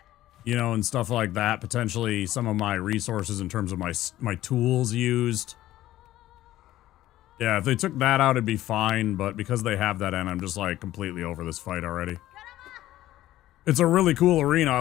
You know, and stuff like that. Potentially some of my resources in terms of my tools used. Yeah, if they took that out, it'd be fine. But because they have that in, I'm just like completely over this fight already. It's a really cool arena.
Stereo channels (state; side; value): quieter; right; 14.6 dB